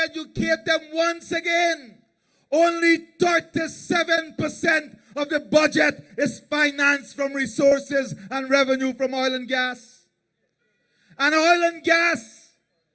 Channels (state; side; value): identical; both; correlation 1.00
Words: educate them once again. Only 37% of the budget is financed from resources and revenue from oil and gas. And oil and gas